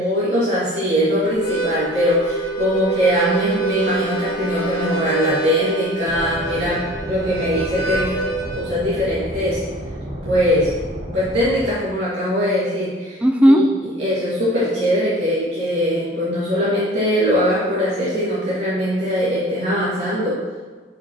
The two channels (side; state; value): both; normal; correlation 0.46